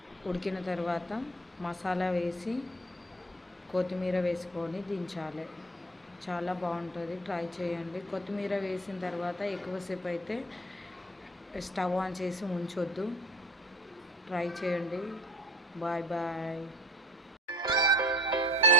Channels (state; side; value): normal; both; correlation 0.44